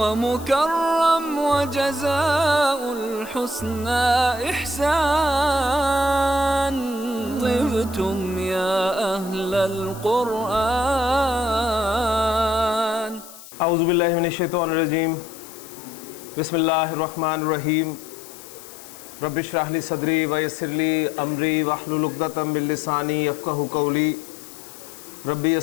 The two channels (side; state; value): left; noise; hiss, 17 dB below the sound